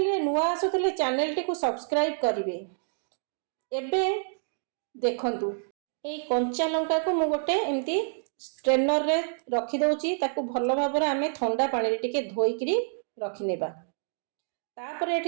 रे नुआ आसुतले चैनल टी को सब्सक्राइब करिवे। एबे देखंतु एई कंचा लंका को मु गोटे एमती स्ट्रेनर रे रखी दउची। ताको भल भाबरे आमे ठंडा पानी रे टिके धोई किरी रखि नेबा। तापरे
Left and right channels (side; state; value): left; silent; digital silence